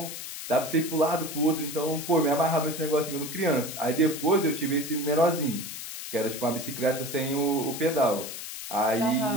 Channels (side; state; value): left; noise; hiss, 9 dB below the sound